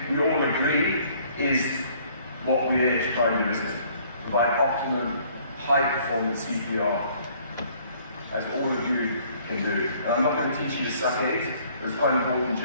we all agree, is what we're trying to do, isn't it? Provide optimum, high-performance CPR, as all of you can do. And I'm not going to teach you to suck eggs, but it's quite important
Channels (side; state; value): both; inverted; correlation -0.59